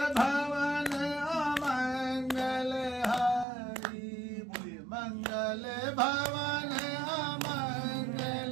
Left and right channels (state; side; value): drops out; left; at 3.5 s